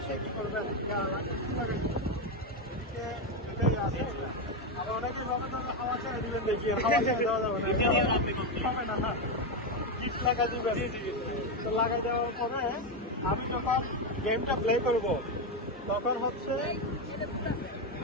কি করবেন আবার অনেকে ভাবে হাওয়া ছেড়ে দিবেন দেখি হাওয়া ছেড়ে দেওয়া যাবে না হবে না কিট লাগা দিবেন তো লাগাই দেওয়ার পরে আমি যখন গেমটা প্লে করব তখন হচ্ছে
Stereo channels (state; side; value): normal; both; correlation 0.09